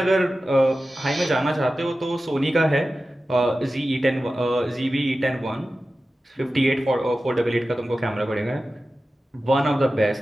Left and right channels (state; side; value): normal; both; correlation 0.94